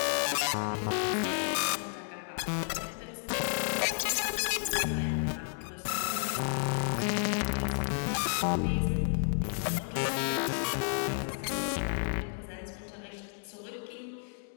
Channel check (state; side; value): silent; right; digital silence